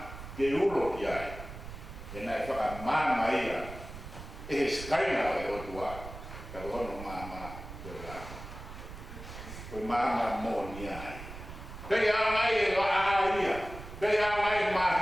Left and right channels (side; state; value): right; noise; rumble, 12 dB below the sound